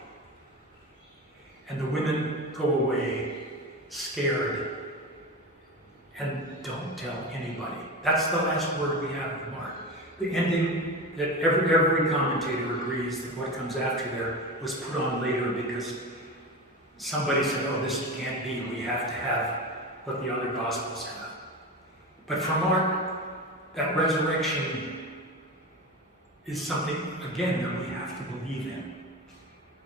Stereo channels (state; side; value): normal; both; correlation 0.25